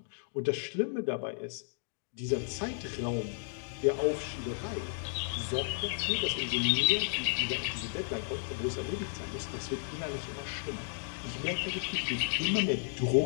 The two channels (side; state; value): right; silent; digital silence